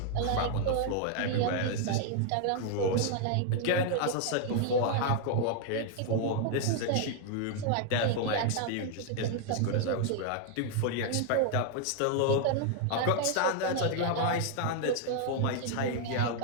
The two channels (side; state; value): both; different; correlation 0.00